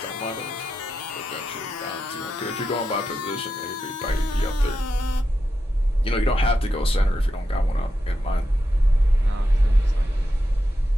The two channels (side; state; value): both; normal; correlation 0.87